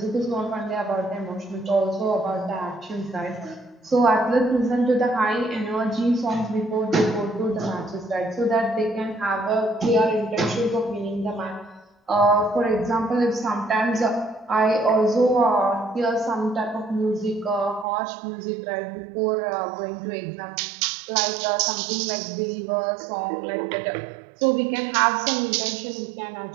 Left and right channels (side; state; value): left; drops out; at 17.9 s